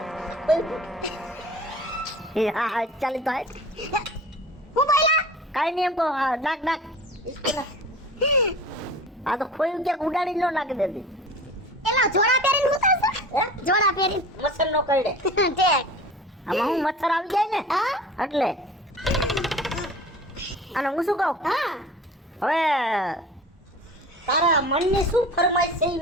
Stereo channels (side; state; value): both; normal; correlation 0.40